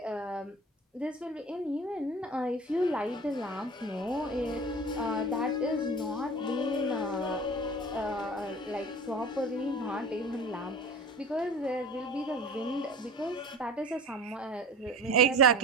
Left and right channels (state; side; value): normal; both; correlation 0.38